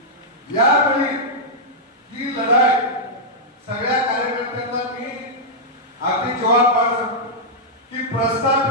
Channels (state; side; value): normal; both; correlation -0.08